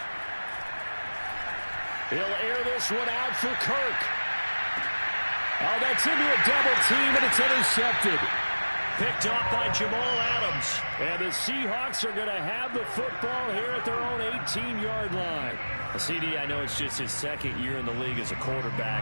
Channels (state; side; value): inverted; both; correlation -1.00